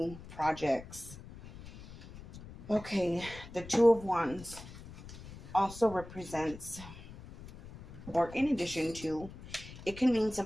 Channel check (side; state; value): left; noise; rumble, 15 dB below the sound